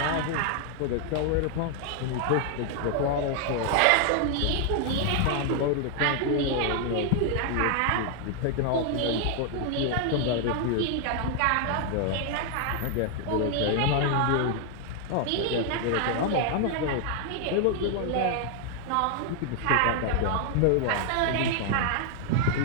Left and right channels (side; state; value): both; different; correlation 0.00